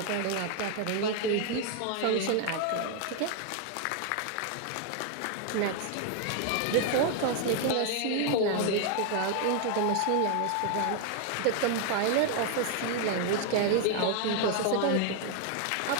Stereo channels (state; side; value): different; both; correlation 0.01